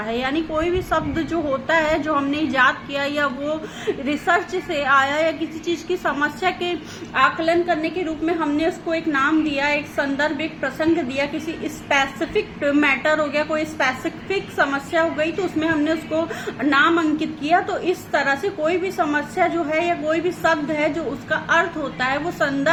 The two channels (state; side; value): identical; both; correlation 1.00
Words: यानी कोई भी शब्द जो होता है, जो हमने इजाद किया या वो रिसर्च से आया या किसी चीज की समस्या के आकलन करने के रूप में हमने उसको एक नाम दिया, एक संदर्भ, एक प्रसंग दिया, किसी स्पेसिफिक मैटर हो गया, कोई स्पेसिफिक समस्या हो गई तो उसमें हमने उसको नाम अंकित किया। तो इस तरह से कोई भी समस्या जो है या कोई भी शब्द है जो उसका अर्थ होता है वो